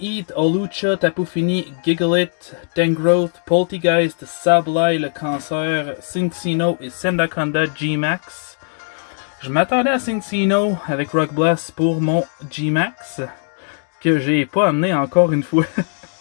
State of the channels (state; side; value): silent; right; digital silence